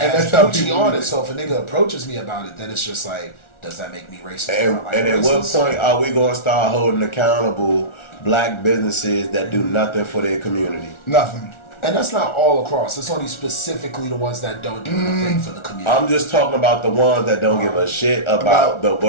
has Gucci on it, so if a nigga approaches me about it, then it's just like, does that make me racist? And at what point are we going to start holding accountable black businesses that do nothing for their community? Nothing. And that's not all across. It's only specifically the ones that don't do anything for the community. I'm just talking about the ones that don't give a shit about the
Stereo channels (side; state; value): right; late; 1.4 ms